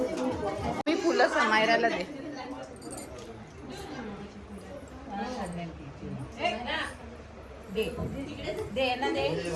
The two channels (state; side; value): identical; both; correlation 1.00